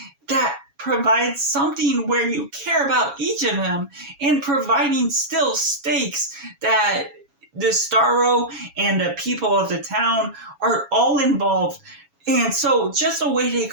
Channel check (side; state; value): left; late; 7.2 ms